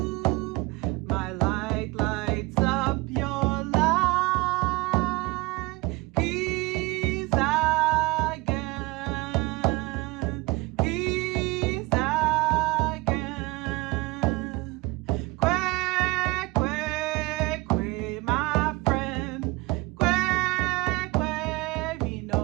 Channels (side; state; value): left; quieter; 22.9 dB